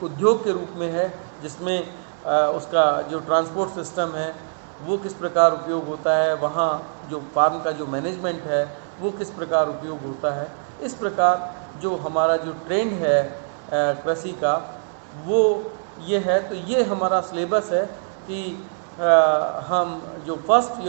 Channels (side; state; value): left; silent; 63 dB below the other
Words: उद्योग के रूप में है, जिसमें उसका जो ट्रांसपोर्ट सिस्टम है वो किस प्रकार उपयोग होता है, वहाँ जो फार्म का जो मैनेजमेंट है वो किस प्रकार उपयोग होता है। इस प्रकार जो हमारा जो ट्रेंड है कृषि का वो ये है। तो ये हमारा सिलेबस है कि हम जो फर्स्ट